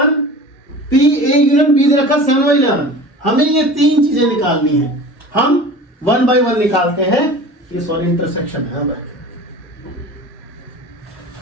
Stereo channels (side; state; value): both; normal; correlation 0.38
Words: P A union B दे रखा 7/11। हमें ये तीन चीजें निकालनी है। हम 1/1 निकालते हैं, ये सॉरी इंटरसेक्शन है भाई,